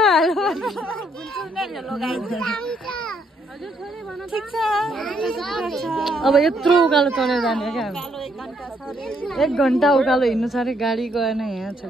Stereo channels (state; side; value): normal; both; correlation 0.72